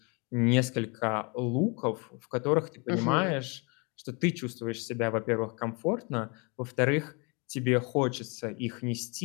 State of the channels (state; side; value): quieter; right; 31.8 dB